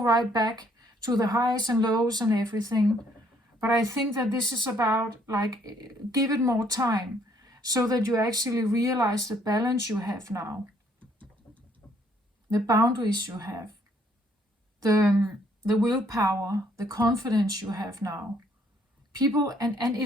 right back to the highs and lows and everything. But I think that this is about, like, give it more time, so that you actually realize the balance you have now, the boundaries you have, the willpower, the confidence you have now. People, and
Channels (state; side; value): normal; both; correlation 0.66